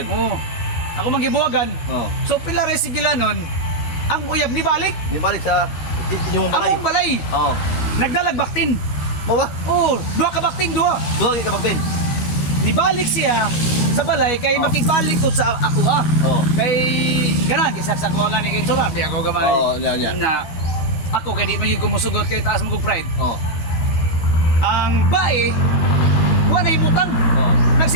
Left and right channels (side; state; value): right; late; 12 ms